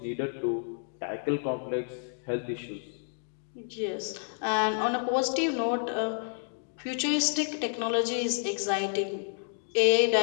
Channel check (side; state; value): right; silent; digital silence